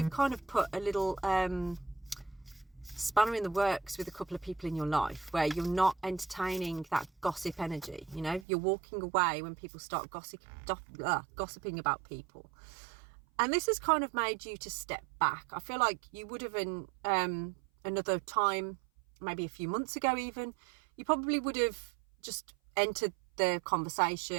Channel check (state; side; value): drops out; left; at 8.5 s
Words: kind of put a little spanner in the works with a couple of people in your life, where you're not entertaining that gossip energy. You know, you're walking away when people start gossiping about people. And this has kind of made you to step back. I feel like you would have in another time, maybe a few months ago even, you probably would have just entered the